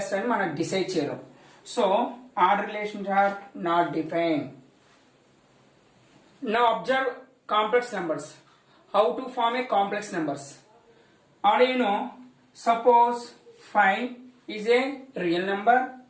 అని మనం decide చేయలేం. So order relations are not defined. Now observe complex numbers. How to form a complex numbers? Already you know, suppose 5 is a real number,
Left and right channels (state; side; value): identical; both; correlation 1.00